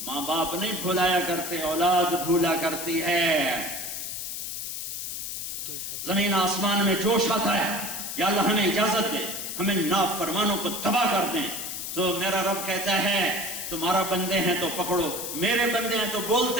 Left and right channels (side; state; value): left; noise; hiss, 5 dB below the sound